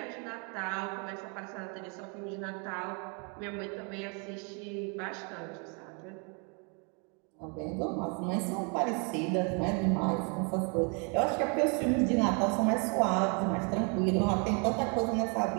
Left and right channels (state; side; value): quieter; left; 35.7 dB